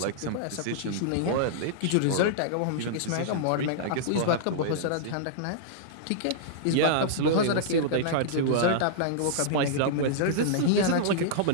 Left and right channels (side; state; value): both; different; correlation -0.02